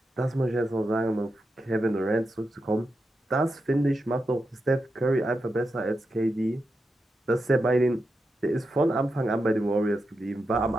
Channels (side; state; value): both; normal; correlation 0.88